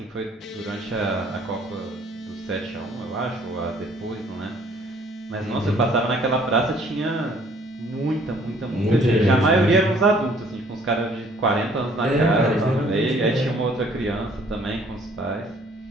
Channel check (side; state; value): both; normal; correlation 0.59